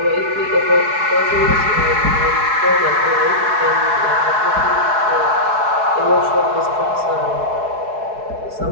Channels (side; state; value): left; late; 4.7 ms